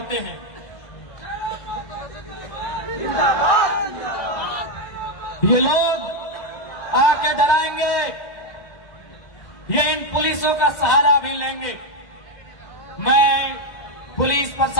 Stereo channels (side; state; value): right; late; 2.0 ms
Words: हैं। ये लोग आके डराएंगे, ये इन पुलिसों का सहारा भी लेंगे। मैं पुलिस